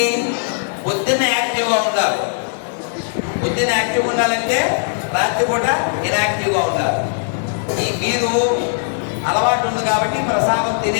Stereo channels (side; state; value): right; silent; 67 dB below the other